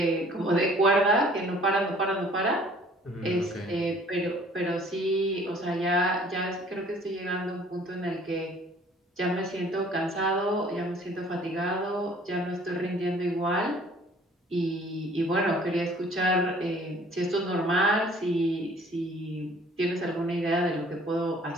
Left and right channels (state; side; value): normal; both; correlation 0.55